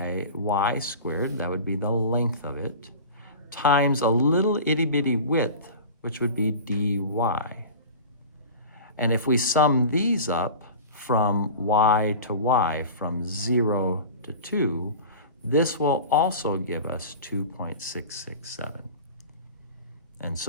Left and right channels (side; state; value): both; inverted; correlation -0.35